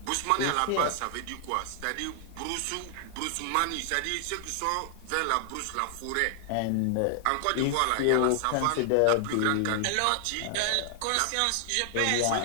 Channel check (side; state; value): both; different; correlation 0.00